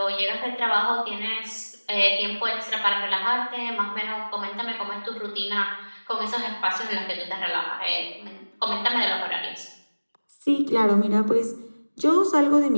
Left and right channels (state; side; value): inverted; both; correlation -1.00